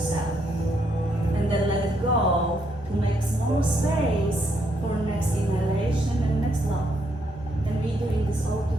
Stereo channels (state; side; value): normal; both; correlation 0.75